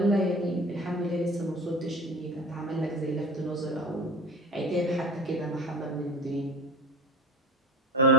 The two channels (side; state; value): both; normal; correlation 0.33